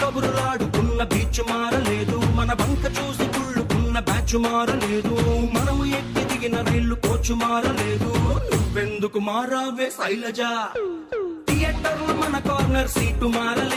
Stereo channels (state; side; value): identical; both; correlation 1.00